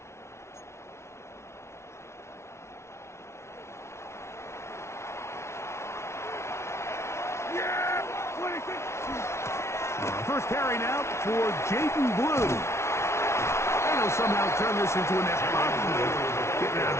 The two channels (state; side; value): late; right; 0.13 ms